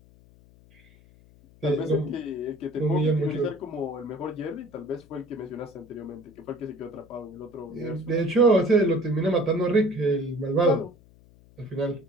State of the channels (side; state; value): left; noise; hum, 26 dB below the sound